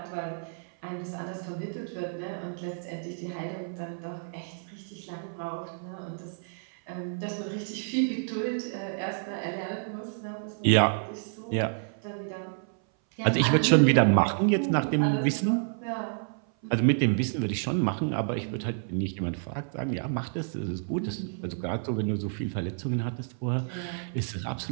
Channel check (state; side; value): silent; left; 57 dB below the other